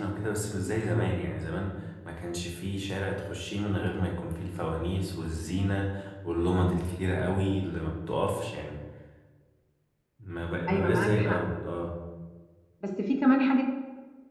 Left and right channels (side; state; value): both; identical; correlation 1.00